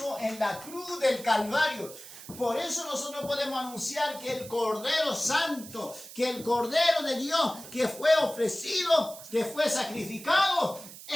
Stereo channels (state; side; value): noise; right; hiss, 15 dB below the sound